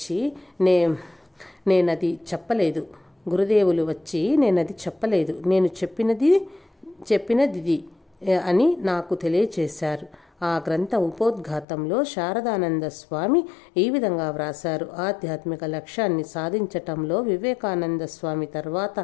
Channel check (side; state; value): right; drops out; at 11.7 s